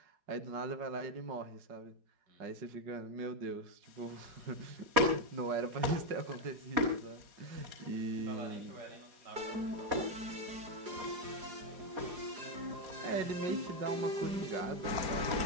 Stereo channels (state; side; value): late; left; 4.8 ms